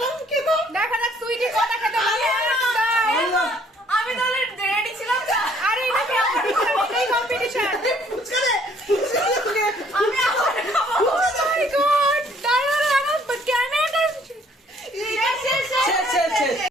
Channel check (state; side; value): normal; both; correlation 0.62